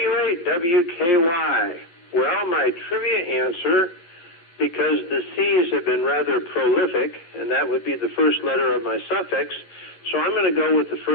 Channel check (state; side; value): late; right; 11 ms